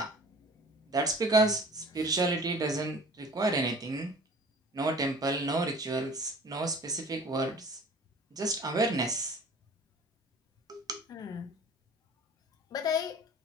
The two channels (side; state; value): both; normal; correlation 0.45